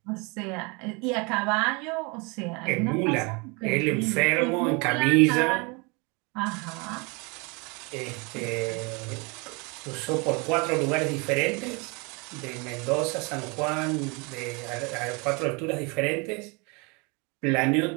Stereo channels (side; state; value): left; quieter; 29.6 dB